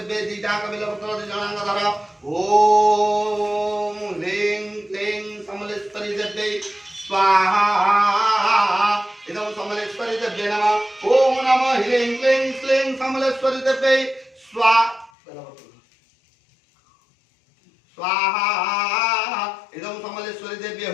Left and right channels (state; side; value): drops out; right; at 15.1 s